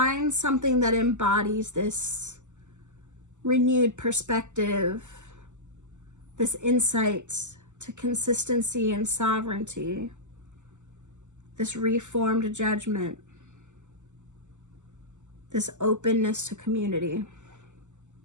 something that embodies this renewed perspective, this insight to consistency and sovereignty, this reformed judgment, this openness to community.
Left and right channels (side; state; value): left; late; 0.84 ms